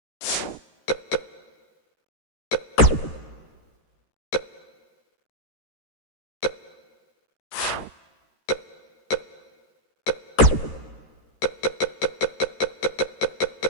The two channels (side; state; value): right; late; 13 ms